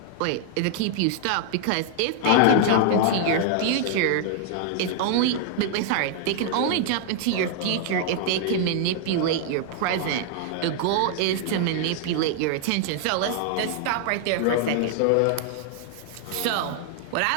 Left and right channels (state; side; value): different; both; correlation 0.00